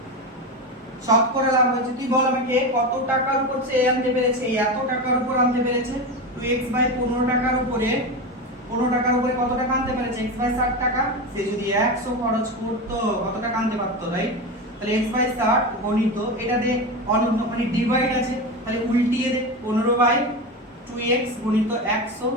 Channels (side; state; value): both; normal; correlation 0.20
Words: শতকরা লাভ হয়েছে, তুই বল আমাকে কত টাকার উপর সে আনতে পেরেছে, এত টাকার উপর আনতে পেরেছে, 2x/15 টাকার উপরে 15 টাকার উপরে কত টাকা আনতে পেরেছে? x/60 টাকা। সে যদি 100 খরচ করতো কত টাকা আনতে পারতো, রাইট? তাহলে x/60 গণিত এটা দে অনন্য মানে ডিভাইড আছে, তাহলে উল্টিয়ে দে 15/2x গণিত 100,